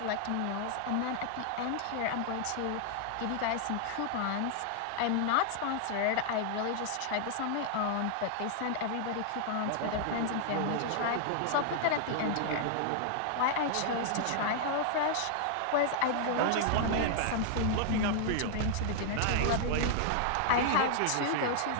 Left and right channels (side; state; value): both; different; correlation -0.01